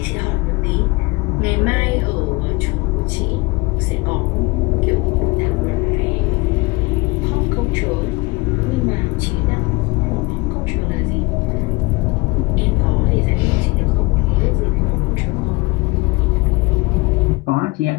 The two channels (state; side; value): quieter; right; 24.4 dB